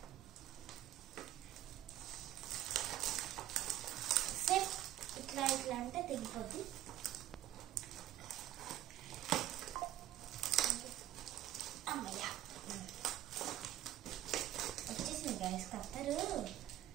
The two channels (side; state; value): left; quieter; 13.8 dB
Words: సేఫ్ ఇట్లా అంటే తెగిపోద్ది. వచ్చేసింది గైస్ కత్తరు.